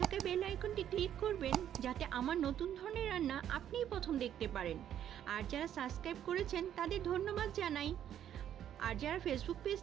থাকা বেল আইকনটি ক্লিক করবেন, যাতে আমার নতুন ধরনের রান্না আপনিই প্রথম দেখতে পারেন। আর যারা সাবস্ক্রাইব করেছেন তাদের ধন্যবাদ জানাই। আর যারা ফেসবুক পেজ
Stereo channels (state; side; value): quieter; left; 10.4 dB